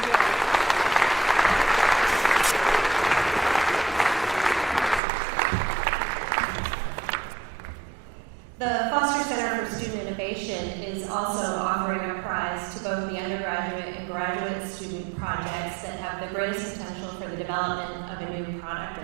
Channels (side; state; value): left; drops out; at 5.0 s